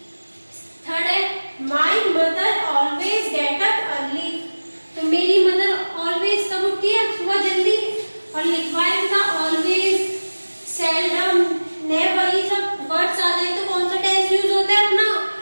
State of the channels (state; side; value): inverted; both; correlation -1.00